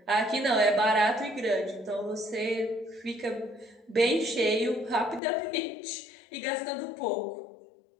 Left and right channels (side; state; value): right; drops out; at 5.2 s